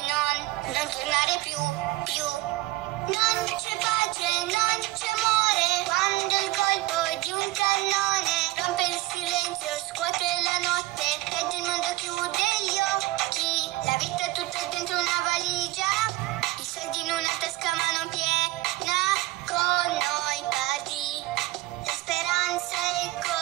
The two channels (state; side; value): quieter; left; 18.1 dB